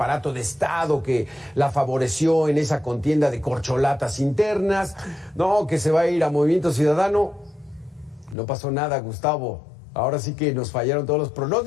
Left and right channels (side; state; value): right; drops out; at 8.3 s